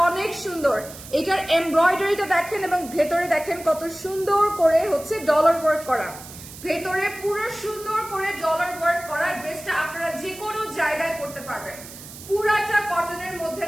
অনেক সুন্দর। এটার এমব্রয়ডারিটা দেখেন এবং ভেতরে দেখেন কত সুন্দর করে হচ্ছে ডলার ওয়ার্ক করা, ভেতরে পুরো সুন্দর করে ডলার ওয়ার্ক করা। ড্রেসটা আপনারা যে কোনো জায়গায় পড়তে পারবেন। পুরাটা কটনের মধ্যে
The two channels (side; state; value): right; noise; hiss, 15 dB below the sound